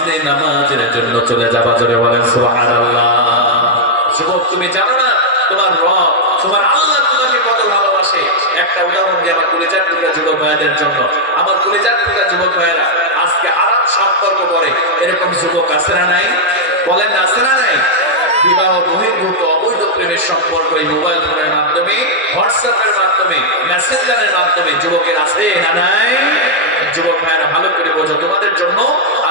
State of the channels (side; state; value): both; normal; correlation -0.03